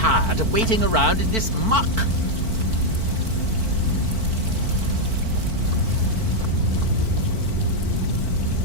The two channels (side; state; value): left; late; 4.5 ms